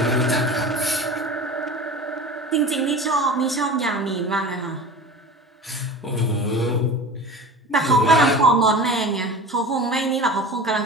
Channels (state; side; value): normal; both; correlation 0.35